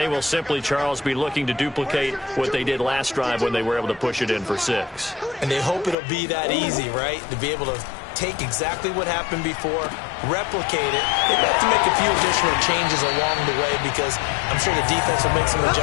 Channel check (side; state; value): right; drops out; at 6.0 s